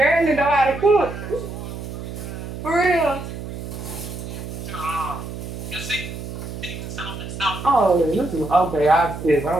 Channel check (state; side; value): noise; right; hum, 8 dB below the sound